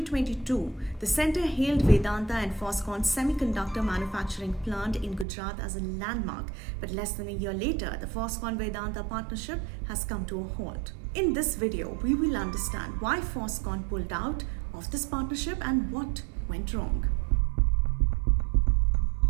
the center hailed Vedanta and Foxconn's semiconductor manufacturing plant in Gujarat as a landmark, but less than a year later, the Foxconn-Vedanta partnership has come to a halt. In this video, we will understand why Foxconn pulled out of this partnership and what went wrong.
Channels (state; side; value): drops out; left; at 5.2 s